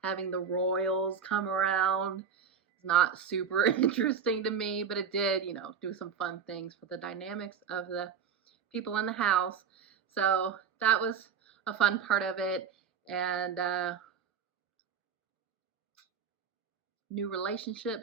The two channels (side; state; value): left; quieter; 6.9 dB